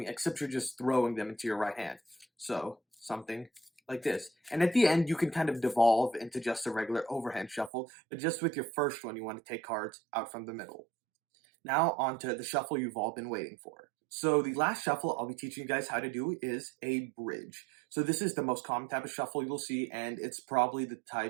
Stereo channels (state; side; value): drops out; left; at 7.7 s